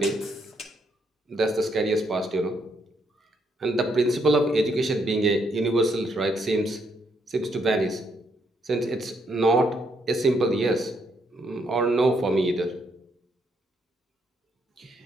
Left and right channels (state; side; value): normal; both; correlation 0.74